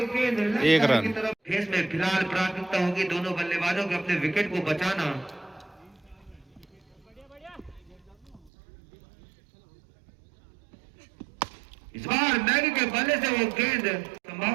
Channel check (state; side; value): drops out; left; at 8.5 s